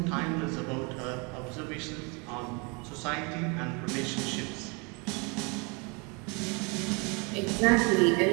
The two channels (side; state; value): left; quieter; 31.3 dB